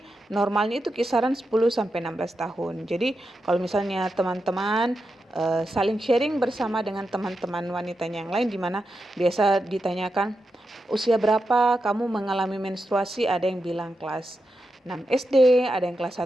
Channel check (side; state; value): both; normal; correlation 0.88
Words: normalnya itu kisaran 10 sampai 16 tahun. Jadi kalau misalnya teman-teman saling sharing bersama dengan teman-teman wanitanya yang lain, di mana biasa ditanyakan usia berapa kamu mengalami menstruasi, ada yang bilang kelas 6 SD, ada yang kelas